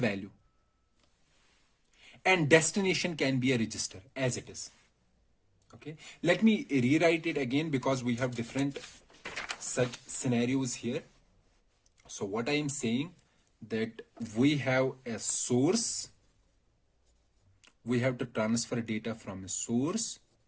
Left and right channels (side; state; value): both; identical; correlation 1.00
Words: and destination can be a register as it is. Okay, let me rewrite it again because we have different such scenarios here. So what I am saying that we have a source, we have to transfer data from a source